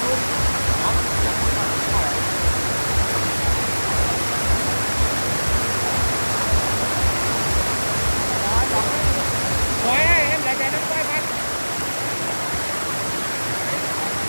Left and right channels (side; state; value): both; inverted; correlation -1.00